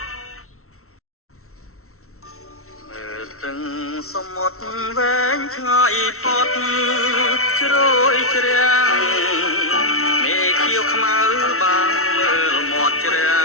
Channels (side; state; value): right; late; 0.63 ms